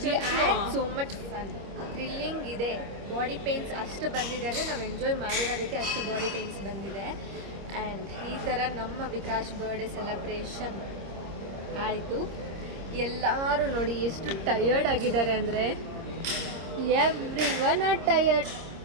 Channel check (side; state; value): left; late; 25 ms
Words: ಸೋ ಮಚ್ ಫನ್, ಥ್ರಿಲ್ಲಿಂಗ್ ಇದೆ. ಬಾಡಿ ಪೇನ್ಸ್ ಅಷ್ಟು ಬಂದಿದೆ ಅಂದರೆ ನಾವು ಎಂಜಾಯ್ ಮಾಡಿರೋದಕ್ಕೆ ಅಷ್ಟು ಬಾಡಿ ಪೇನ್ಸ್ ಬಂದಿದೆ. ಆ್ಯಂಡ್ ಈ ಥರ ನಮ್ಮ ವಿಕಾಸ್ ಬರ್ಡೇ ಸೆಲೆಬ್ರೇಷನ್ ಆಯಿತು. ಎಲ್ಲರೂ ನೋಡಿ ಎಷ್ಟು ಟಯರ್ಡ್ ಆಗಿದ್ದಾರೆ ಅಂದರೆ, ಎವ್ರಿವನ್ ಆರ್ ಟಯರ್ಡ್.